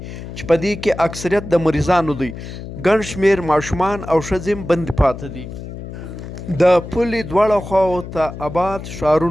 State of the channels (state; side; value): noise; left; hum, 11 dB below the sound